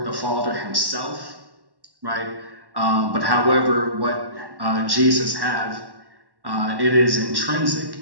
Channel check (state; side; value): late; left; 1.1 ms